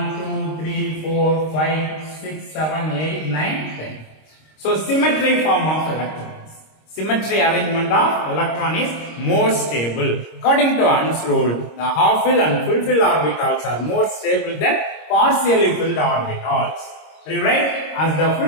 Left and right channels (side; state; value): right; late; 26 ms